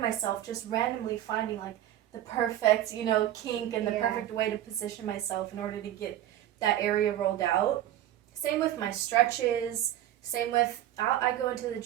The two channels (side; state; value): left; quieter; 12.6 dB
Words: just randomly finding like the perfect, kink and the perfect way to position myself in order to get that area rolled out. Same with my stretches. Same with, I go into the